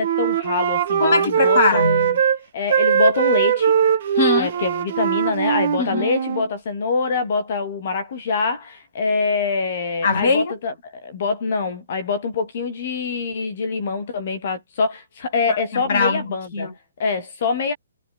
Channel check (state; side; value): inverted; both; correlation -0.56